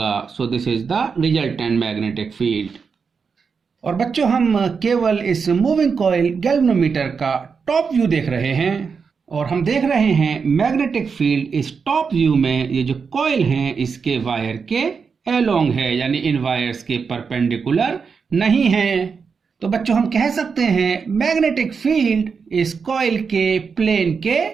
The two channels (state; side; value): quieter; left; 5.6 dB